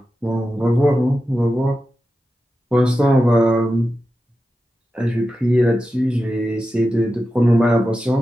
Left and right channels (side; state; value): both; normal; correlation 0.91